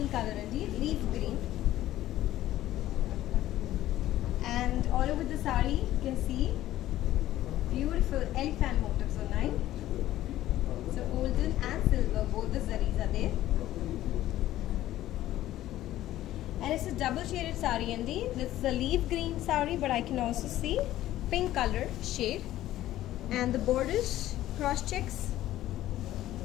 color andi, leaf green, and all over the saree you can see beautiful elephant motifs unnai. So golden and silver, both the zaris are there. And it's a double shaded saree andi. This is a leaf green saree, but I can also see pink color shade. And the borders, cross checks,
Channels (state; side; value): quieter; right; 14.1 dB